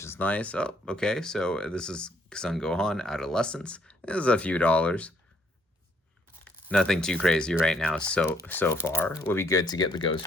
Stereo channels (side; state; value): both; normal; correlation 0.68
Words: is nice. Oh, okay, so this is Son Gohan Adolescence. This is a few dollars. Nothing too crazy right now so far. Would be good to get the